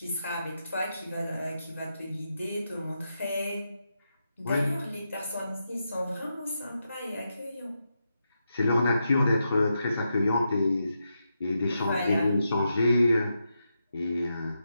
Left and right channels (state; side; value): inverted; both; correlation -0.86